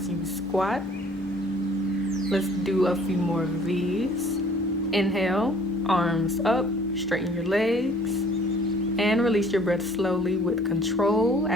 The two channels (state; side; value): normal; both; correlation 0.54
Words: you squat. Let's do a few more of these. Inhale, arms up, straighten your legs, and release your breath slowly with control